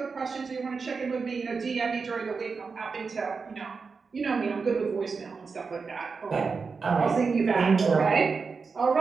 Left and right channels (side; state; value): left; quieter; 4.9 dB